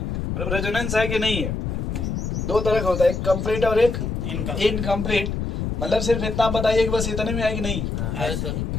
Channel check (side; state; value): left; noise; rumble, 2 dB below the sound